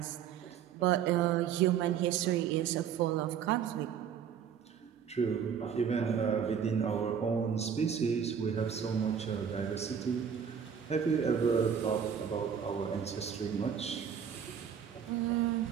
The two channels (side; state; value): left; quieter; 7.8 dB